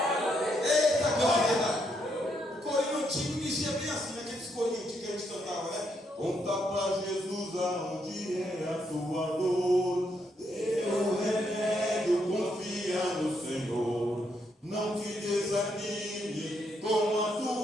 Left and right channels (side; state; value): both; normal; correlation 0.76